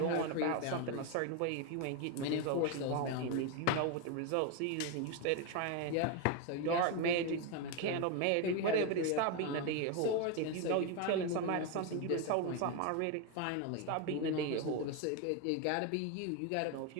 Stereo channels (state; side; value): different; both; correlation 0.02